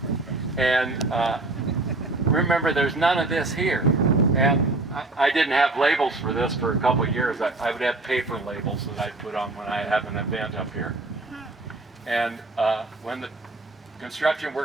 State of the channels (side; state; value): left; quieter; 3.1 dB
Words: And remember, there's none of this here. And I didn't have labels for this for a couple of years. I would have paper labels that I'd put on when I have an event up here. And when the construction